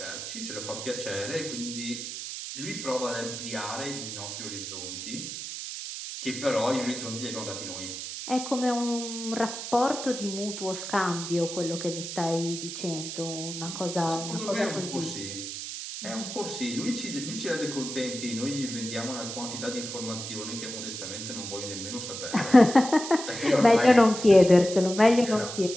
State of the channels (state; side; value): noise; right; hiss, 7 dB below the sound